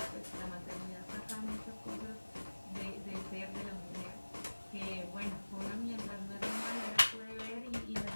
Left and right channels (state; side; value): inverted; both; correlation -1.00